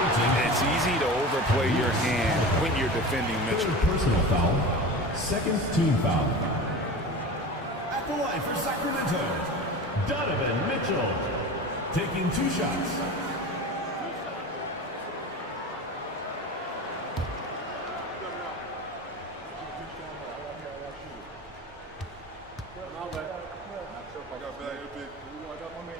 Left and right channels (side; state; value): both; normal; correlation 0.32